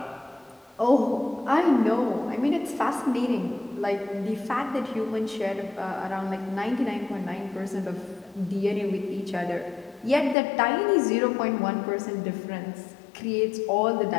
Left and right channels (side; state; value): right; drops out; at 10.4 s